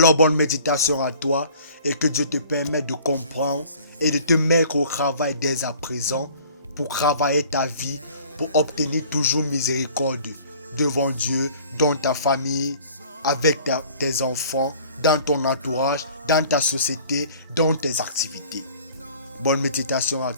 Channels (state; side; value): inverted; both; correlation -0.50